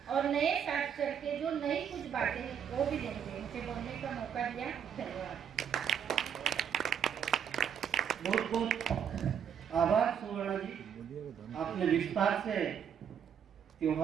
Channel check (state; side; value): quieter; left; 8.1 dB